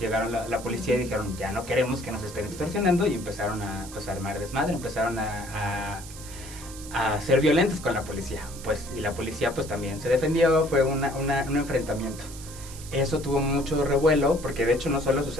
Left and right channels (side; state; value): right; noise; hiss, 15 dB below the sound